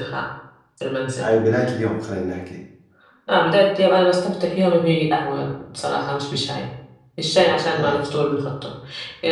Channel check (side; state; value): both; identical; correlation 1.00